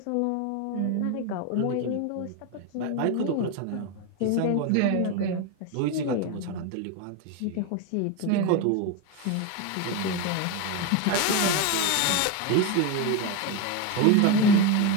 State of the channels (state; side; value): different; both; correlation 0.03